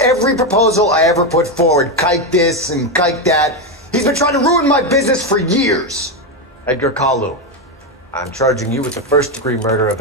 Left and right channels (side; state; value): both; normal; correlation 0.09